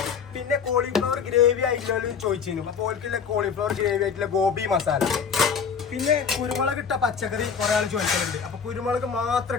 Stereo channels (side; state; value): right; quieter; 6.5 dB